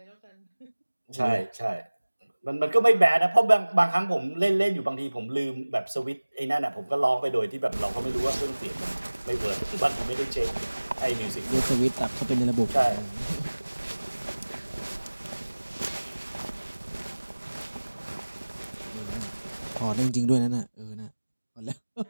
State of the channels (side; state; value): both; inverted; correlation -1.00